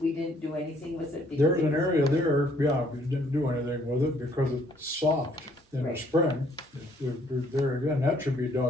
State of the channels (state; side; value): normal; both; correlation 0.64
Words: do anything with it. because There's it an was- area there, yeah, we didn't do anything with it because it's soft in the Right. spring. There again, that should be